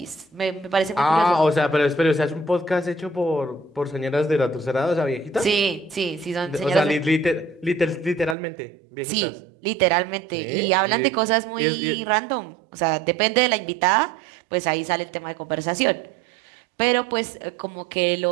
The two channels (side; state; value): left; drops out; at 8.3 s